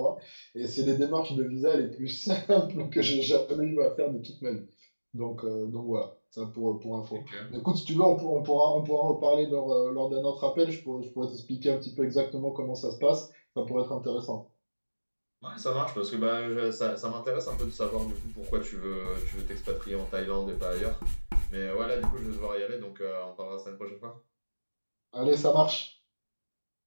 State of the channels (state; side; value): inverted; both; correlation -1.00